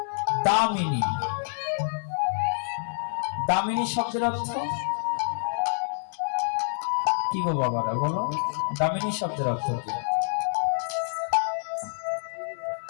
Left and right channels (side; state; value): right; silent; digital silence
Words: দামিনী, দামিনী শব্দের অর্থ কি গো বাবারা, বলো দামিনী শব্দের অর্থ কি?